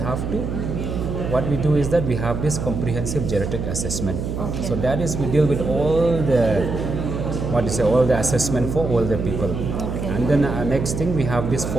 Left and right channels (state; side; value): noise; right; hum, 4 dB below the sound